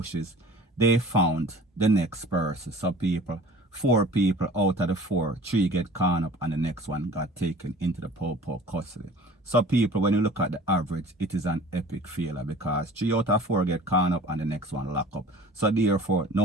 they found the next person. So people, 4 people out of the 4, 3 get caught up and the next one got taken into the Popo custody. So people, when you look at the average, it is an epic failure because 3 out of 4 get caught up and the next one lock up. So therefore,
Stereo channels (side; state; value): both; normal; correlation 0.45